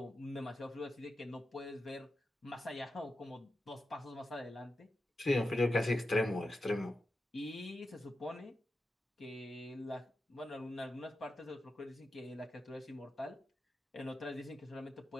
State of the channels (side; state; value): both; normal; correlation 0.90